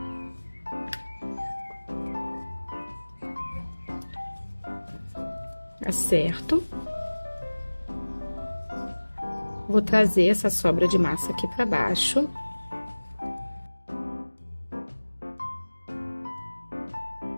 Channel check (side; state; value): both; inverted; correlation -1.00